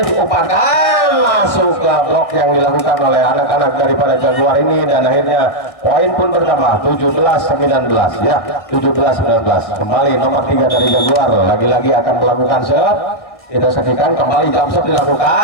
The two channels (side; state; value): right; late; 1.7 ms